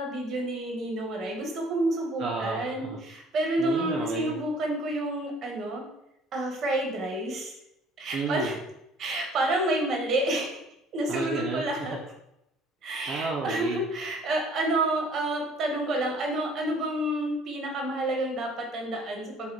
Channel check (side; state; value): both; normal; correlation 0.55